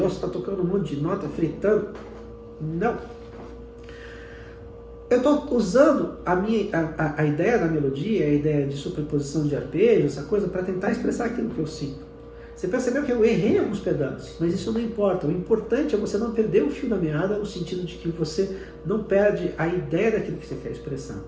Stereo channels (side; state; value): both; identical; correlation 1.00